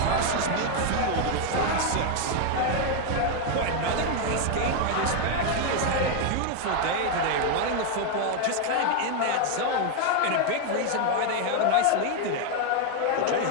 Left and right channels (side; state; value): both; different; correlation 0.01